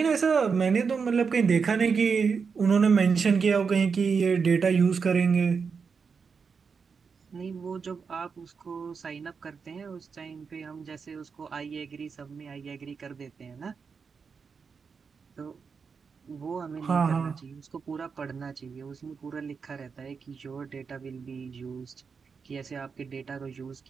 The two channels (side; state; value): left; quieter; 5.6 dB